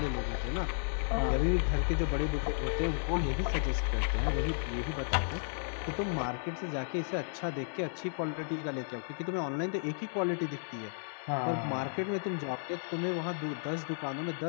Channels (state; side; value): silent; right; digital silence